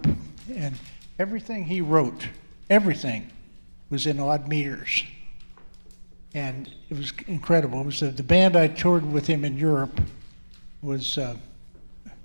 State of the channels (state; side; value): inverted; both; correlation -1.00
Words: and everything he wrote, everything was in odd meters. And it was incredible. It was the band I toured with him in Europe was a